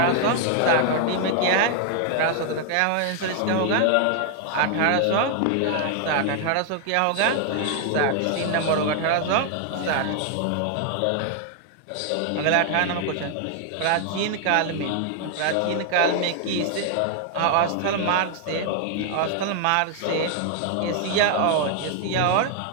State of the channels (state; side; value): different; both; correlation 0.00